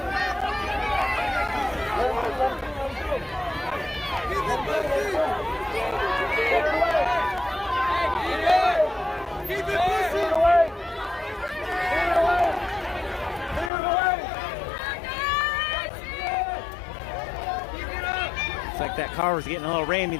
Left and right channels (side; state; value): right; drops out; at 13.7 s